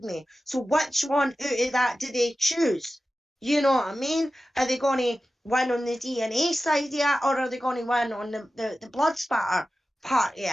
So which one out of that do they choose? You know what I mean? Are they going to win on the DNA side yet, or are they going to win on the blood spatter part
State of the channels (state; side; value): normal; both; correlation 0.94